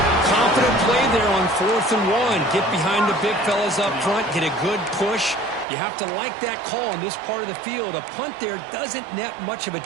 Confident play there on 4th and 1. Get behind the big fellas up front. Get a good push. You have to like that call in this part of the field. A punt there doesn't net much of a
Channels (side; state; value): left; drops out; at 5.7 s